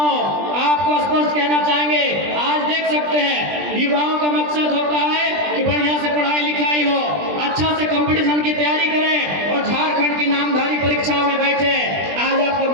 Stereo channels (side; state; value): left; late; 20 ms